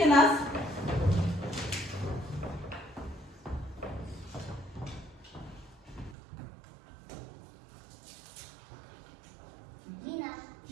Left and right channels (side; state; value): left; drops out; at 6.2 s